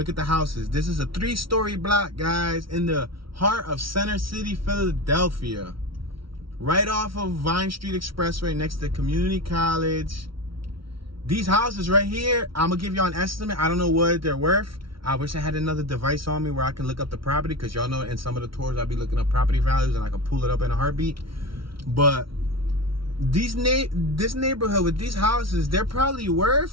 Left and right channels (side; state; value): left; late; 0.74 ms